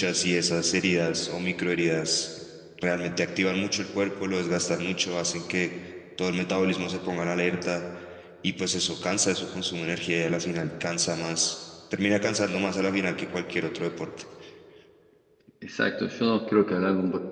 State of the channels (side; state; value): both; identical; correlation 1.00